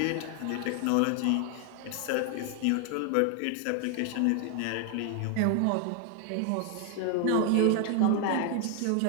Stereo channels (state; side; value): different; both; correlation 0.00